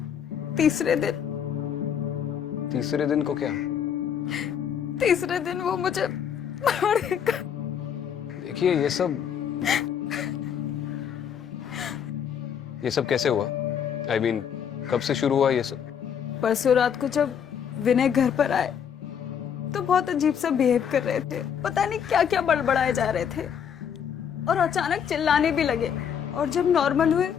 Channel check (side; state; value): right; quieter; 8.1 dB